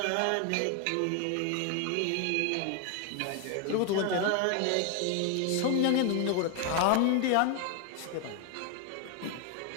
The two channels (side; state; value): both; different; correlation 0.01